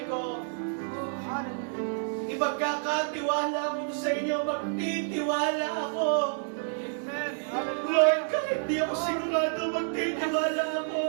ko. Hallelujah. Ipagkakatiwala ko sa inyo, magtitiwala ako. Amen. Lord, Hallelujah. kahit di ako sigurado, magtitiwala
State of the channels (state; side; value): silent; left; digital silence